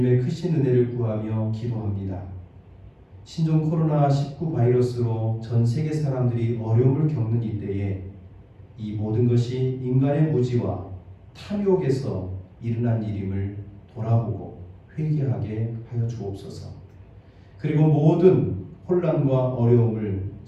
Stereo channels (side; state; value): both; identical; correlation 1.00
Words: 크신 은혜를 구하며 기도합니다. 신종 코로나19 바이러스로 전 세계 사람들이 어려움을 겪는 이때에 이 모든 것이 인간의 무지와 탐욕에서 일어난 일임을 돌아보고 회개하게 하여 주옵소서. 그리고 모든 혼란과 어려움을